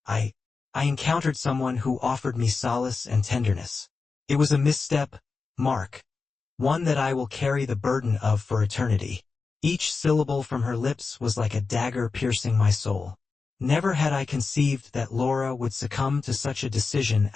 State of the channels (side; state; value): right; quieter; 4.5 dB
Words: I encountered someone who offered me solace and tenderness. It was a misstep, Mark. One that I will carry the burden of for eternity. Each syllable from her lips was like a dagger piercing my soul. Never had I conceived that Laura would succumb to such a decision